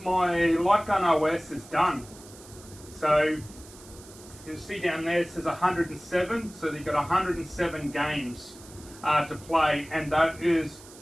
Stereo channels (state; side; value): noise; right; hiss, 20 dB below the sound